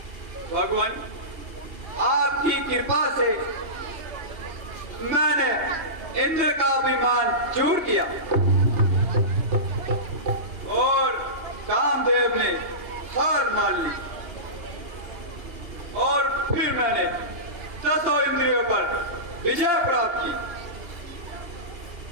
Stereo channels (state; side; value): late; left; 2.9 ms